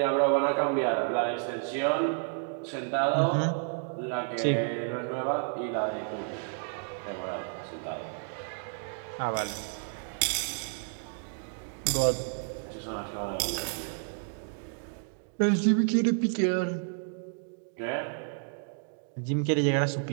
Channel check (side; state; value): left; silent; 57 dB below the other